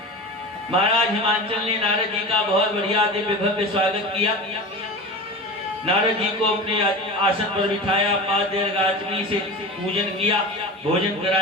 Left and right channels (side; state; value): both; normal; correlation 0.31